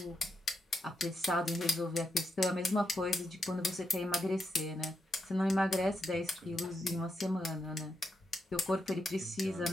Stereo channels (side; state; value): both; normal; correlation 0.83